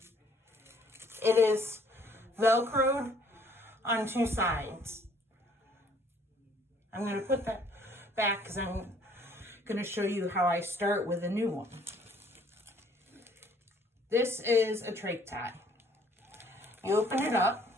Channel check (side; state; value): both; normal; correlation 0.60